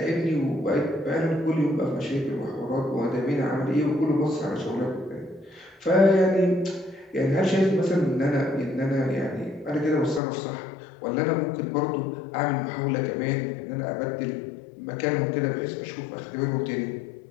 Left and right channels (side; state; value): right; drops out; at 10.2 s